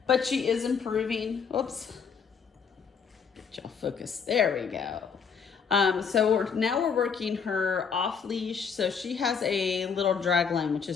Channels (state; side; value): quieter; right; 6.3 dB